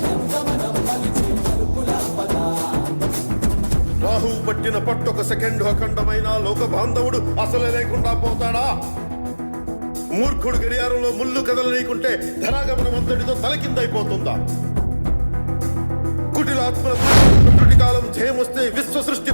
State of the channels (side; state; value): both; inverted; correlation -1.00